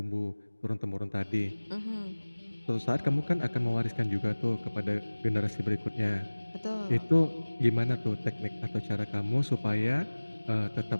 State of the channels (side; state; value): both; inverted; correlation -1.00